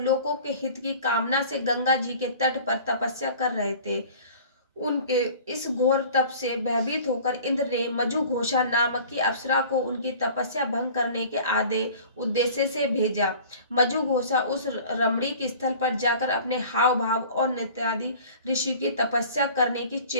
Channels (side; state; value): both; inverted; correlation -0.45